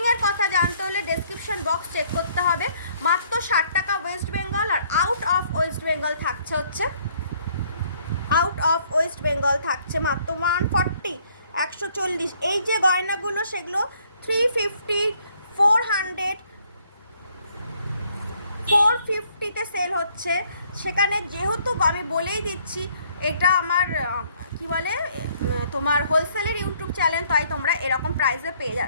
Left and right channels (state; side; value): inverted; both; correlation -0.64